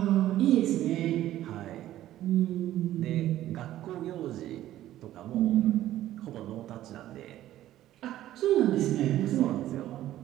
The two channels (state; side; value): quieter; left; 13.6 dB